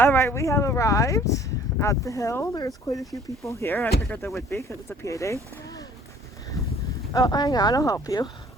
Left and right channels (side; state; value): both; normal; correlation 0.55